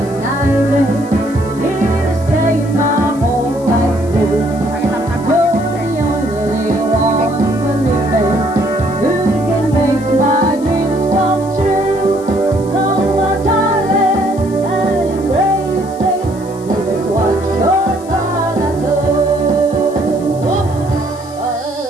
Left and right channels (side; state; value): left; noise; hiss, 22 dB below the sound